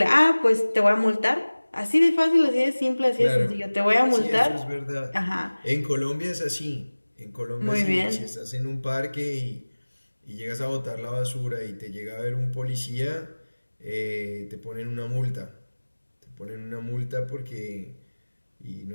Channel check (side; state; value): both; inverted; correlation -1.00